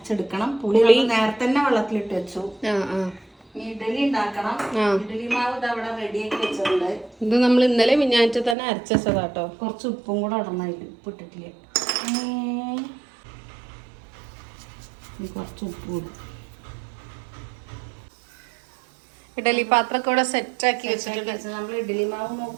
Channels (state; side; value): drops out; left; at 8.6 s